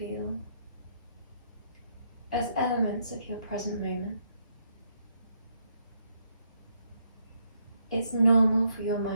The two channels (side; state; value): both; inverted; correlation -0.75